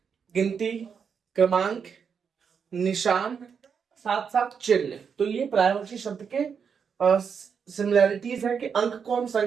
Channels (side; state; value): left; quieter; 6.6 dB